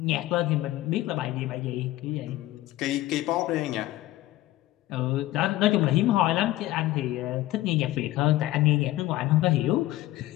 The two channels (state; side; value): quieter; right; 16.3 dB